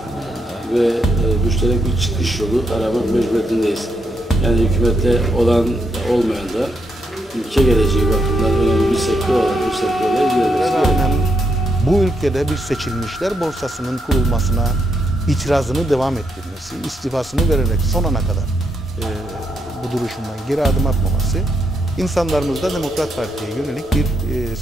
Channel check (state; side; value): normal; both; correlation 0.79